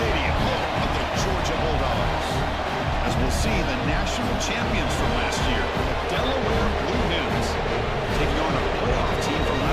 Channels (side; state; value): both; identical; correlation 1.00